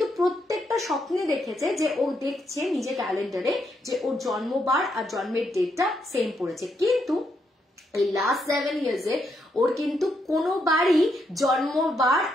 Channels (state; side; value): normal; both; correlation 0.78